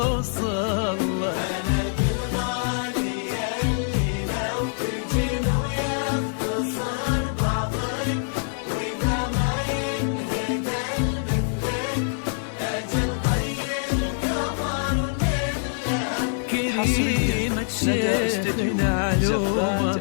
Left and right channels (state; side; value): silent; right; digital silence